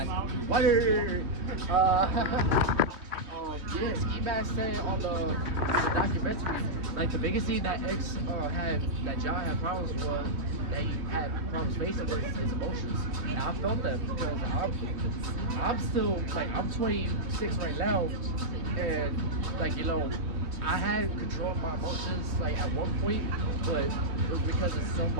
Word. Yeah, Ski Mask said on the documentary, like the biggest thing that that John had problems with, that he had problems facing was his emotions. And I felt that because I'm still, like, I'm 26 right now, and like, you know, I had control of my emotions like at one point, but it was because of so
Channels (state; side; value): late; left; 3.1 ms